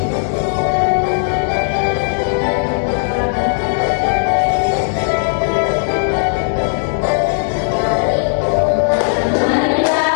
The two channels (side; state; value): right; silent; digital silence